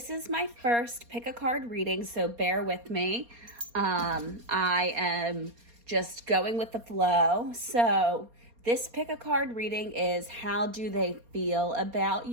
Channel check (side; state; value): left; late; 4.3 ms